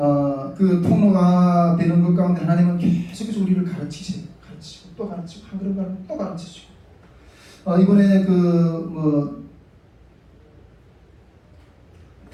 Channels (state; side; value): identical; both; correlation 1.00